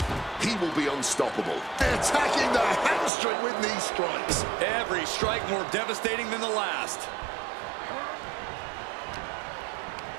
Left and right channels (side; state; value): left; drops out; at 3.1 s